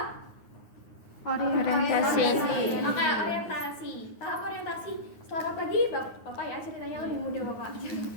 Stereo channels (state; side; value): late; right; 9.5 ms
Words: Orientasi. Oke, orientasi. Tahap orientasi. Selamat pagi, Bapak ya, ceritanya lebih mudah Bapak.